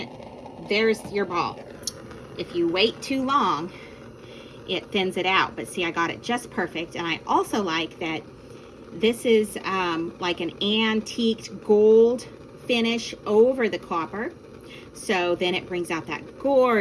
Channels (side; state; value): both; identical; correlation 1.00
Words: There's your ball. If you wait too long, it thins it out. But see, I got it just perfect. And I also like that this is like an antiqued gold finish over the copper. So then it brings out that